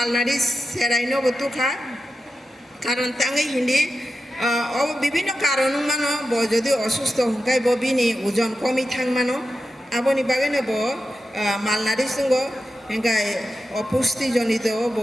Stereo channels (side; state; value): both; normal; correlation 0.90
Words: সেরাইনো বতুখা কারণ তাঙ্গি হিন্দি বিভিন্ন কারণ মানো যদি অসুস্থ হংকাই বিনি ওজন কমি থাং মানো আবনি বাগैनो মালনারি সঙ্গ এঙ্গাই অপুষ্টিজনিত